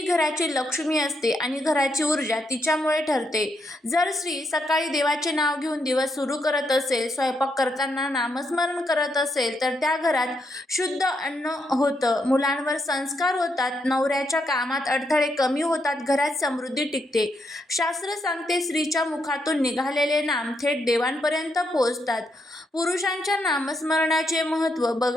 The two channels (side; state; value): both; normal; correlation 0.79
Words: घराची लक्ष्मी असते आणि घराची ऊर्जा तिच्यामुळे ठरते. जर स्त्री सकाळी देवाचे नाव घेऊन दिवस सुरू करत असेल, स्वयंपाक करताना नामस्मरण करत असेल, तर त्या घरात शुद्ध अन्न होतं, मुलांवर संस्कार होतात, नवऱ्याच्या कामात अडथळे कमी होतात, घरात समृद्धी टिकते. शास्त्र सांगते स्त्रीच्या मुखातून निघालेले नाम थेट देवांपर्यंत पोहोचतात. पुरुषांच्या नामस्मरणाचे महत्त्व